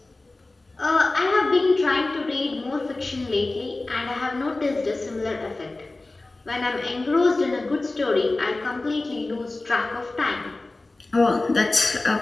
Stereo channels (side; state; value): right; quieter; 3.1 dB